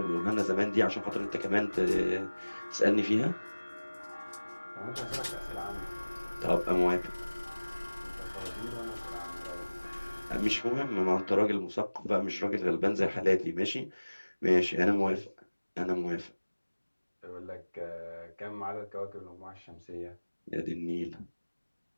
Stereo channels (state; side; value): inverted; both; correlation -1.00